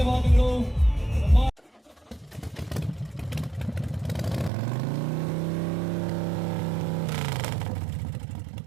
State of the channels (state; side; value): drops out; left; at 4.5 s